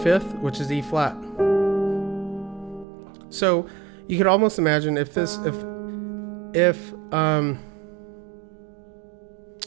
which is E flat. So you could almost imagine if this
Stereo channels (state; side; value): drops out; left; at 2.9 s